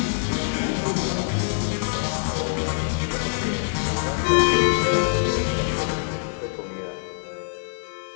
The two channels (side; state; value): right; silent; digital silence